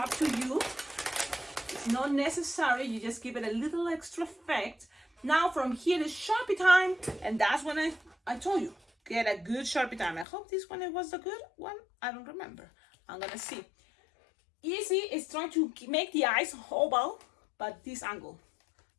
to you. It's not necessary, you just give it a little extra effect. Now from here is Sharpie time, and that's when I told you, get a good Sharpie time. I hope this one was the good one. I don't remember. I'm gonna see. Easy is trying to make the eyes oval, but this angle.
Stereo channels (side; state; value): right; drops out; at 10.2 s